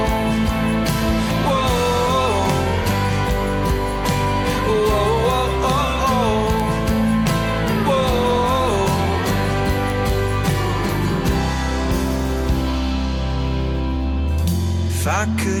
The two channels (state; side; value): identical; both; correlation 1.00